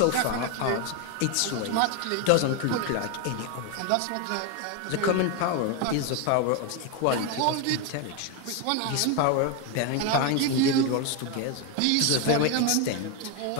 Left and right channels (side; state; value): both; different; correlation 0.02